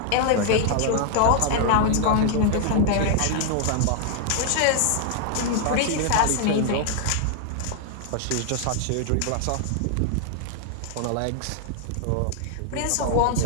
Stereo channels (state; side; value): different; both; correlation 0.00